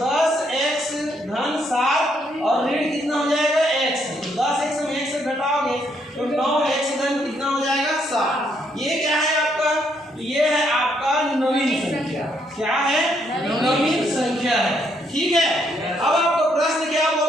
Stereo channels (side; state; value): both; normal; correlation 0.73